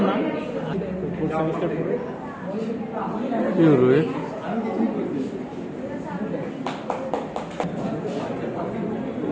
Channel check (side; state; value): both; identical; correlation 1.00